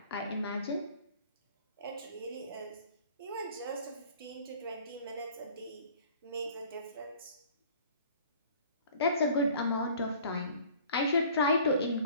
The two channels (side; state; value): both; inverted; correlation -0.50